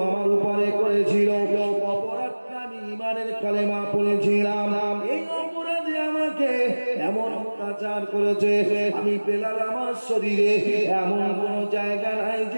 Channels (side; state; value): both; inverted; correlation -1.00